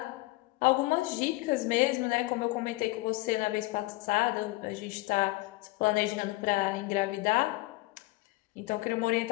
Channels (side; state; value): right; quieter; 21.1 dB